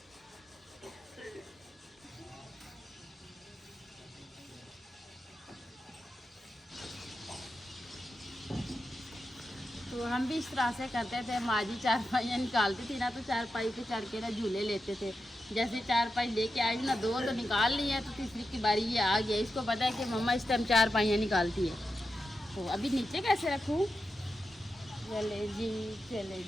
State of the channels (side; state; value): both; normal; correlation 0.89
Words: तो हम भी इस तरह से करते थे, माँ जी चारपाइयाँ निकालती थी ना, तो चारपाई पे चढ़ के ना झूले लेते थे। जैसे चारपाई लेके आई ना, दो तो निकाल ली है, तो तीसरी की बारी ये आ गया। इसको पता है कि मम्मा इस टाइम चारपाइयाँ निकालती है। तो अभी नीचे कैसे रखूँ? चले जी